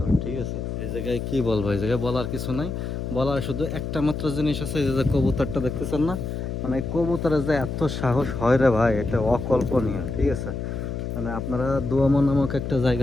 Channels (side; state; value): left; noise; hum, 4 dB below the sound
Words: ঠিক আছে, এই জায়গায় কি বলবো, এই জায়গায় বলার কিছু নাই। বলার শুধু একটা মাত্র জিনিস আছে, এই যে কবুতরটা দেখতেছেন না, মানে এই কবুতরের যে এত সাহস হয় রে ভাই, এটা অকল্পনীয়। ঠিক আছে, মানে আপনারা দুয়ামো নামক একটা